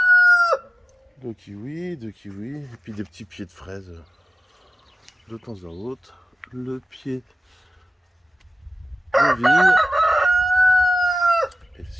Deux kiwis, et puis des petits pieds de fraises de temps à autre. Le pied de vigne. Et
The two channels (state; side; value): normal; both; correlation 0.96